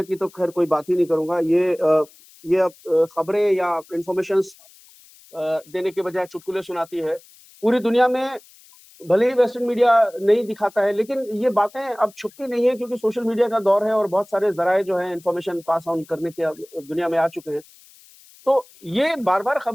की तो खैर कोई बात ही नहीं करूंगा। ये खबरें या इंफॉर्मेशन देने के बजाय चुटकुले सुनाती है। पूरी दुनिया में भले ही वेस्टर्न मीडिया नहीं दिखाता है, लेकिन ये बातें अब छुपती नहीं है क्योंकि सोशल मीडिया का दौर है और बहुत सारे जराए जो है इंफॉर्मेशन पास ऑन करने के दुनिया में आ चुके हैं। तो ये बार बार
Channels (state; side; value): noise; left; hiss, 25 dB below the sound